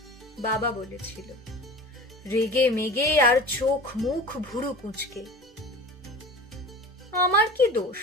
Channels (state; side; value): normal; both; correlation 0.37